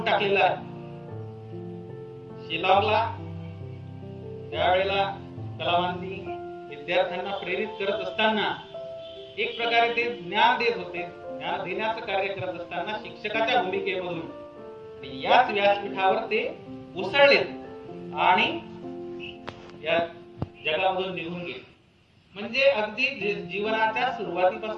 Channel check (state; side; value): identical; both; correlation 1.00